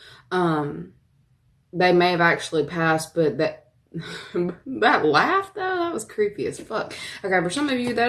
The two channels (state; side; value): identical; both; correlation 1.00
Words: they may have actually passed, but that laugh, though, that was creepy as fuck. Okay, for some of you, that